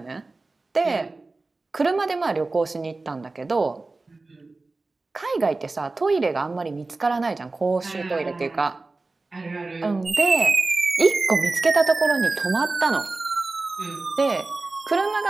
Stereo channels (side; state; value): left; quieter; 3.4 dB